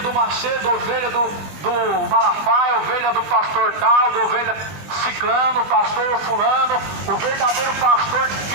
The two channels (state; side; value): late; left; 21 ms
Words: do Macedo, ovelha do Malafaia, ovelha do pastor tal, do ovelha ciclano, pastor fulano. O verdadeiro pastor